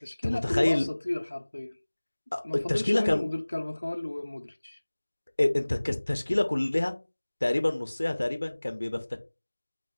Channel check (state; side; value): inverted; both; correlation -1.00